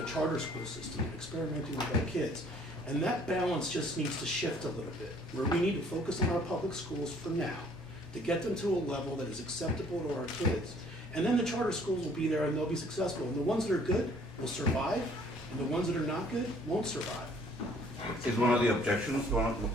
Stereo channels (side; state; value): both; normal; correlation 0.58